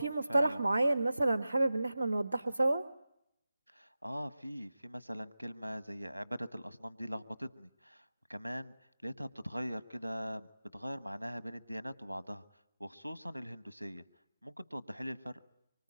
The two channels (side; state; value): both; inverted; correlation -0.94